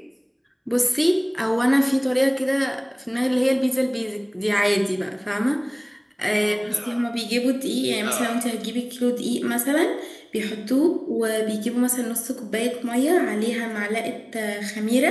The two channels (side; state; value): both; identical; correlation 1.00